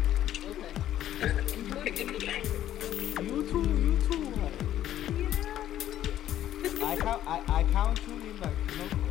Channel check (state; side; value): quieter; right; 12.0 dB